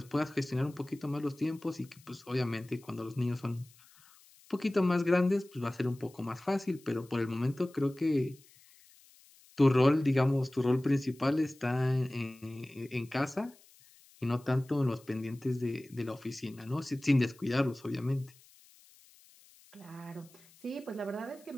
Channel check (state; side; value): noise; left; hiss, 26 dB below the sound